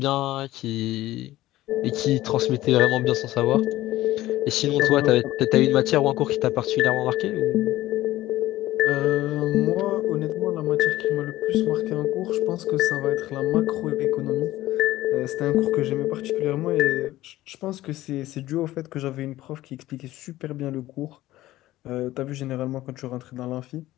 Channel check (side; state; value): right; quieter; 15.9 dB